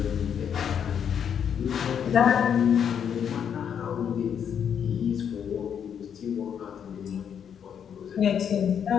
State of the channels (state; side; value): quieter; right; 8.1 dB